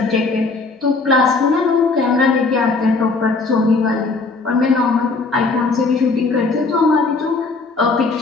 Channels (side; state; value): right; quieter; 3.9 dB